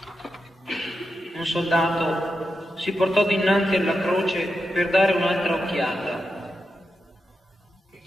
Un soldato si portò dinanzi alla croce per dare un'altra occhiata.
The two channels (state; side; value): normal; both; correlation 0.88